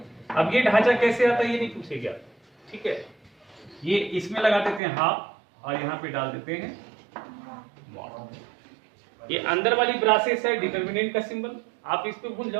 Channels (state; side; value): drops out; left; at 4.8 s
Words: अब ये ढांचा कैसे आता है ये नहीं पूछेगा। ठीक है, ये इसमें लगा देते हैं हाफ और यहाँ पे डाल देते हैं मॉड। ये अंदर वाली ब्रासेस है डिटरमिनेंट का सिंबल, आप इस पे भूल